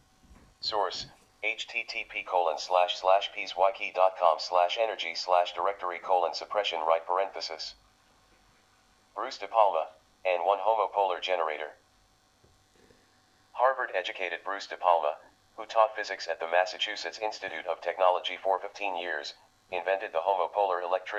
Source: http://pswiki.com/energy/directory:suppression right parenthesis. Bruce De Palma, and 1 homopolar generator. Harvard-educated Bruce De Palma, who taught physics at the Massachusetts Institute of Technology for 15 years, invented the homopolar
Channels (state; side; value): identical; both; correlation 1.00